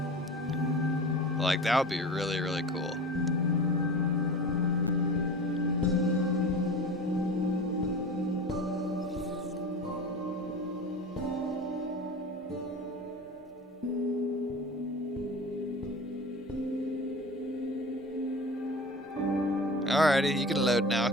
Like, that would be really, really cool. Alrighty, you can load now.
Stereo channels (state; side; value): normal; both; correlation 0.35